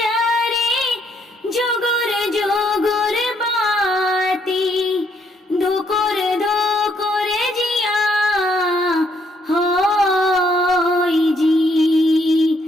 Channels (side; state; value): both; normal; correlation 0.71